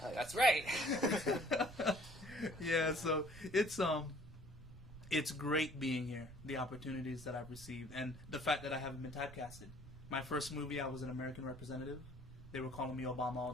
That's right. Yeah, so it's great being here, the opportunities that I've received, and the fact that I haven't been typecasted. My first movie, I was an American representative. They were calling me Obama all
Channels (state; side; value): noise; right; rumble, 15 dB below the sound